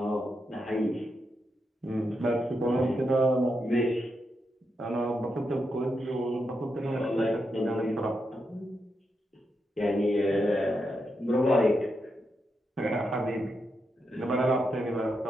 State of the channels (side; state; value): both; normal; correlation 0.84